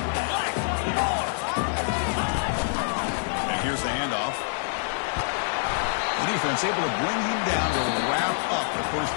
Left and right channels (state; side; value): silent; right; digital silence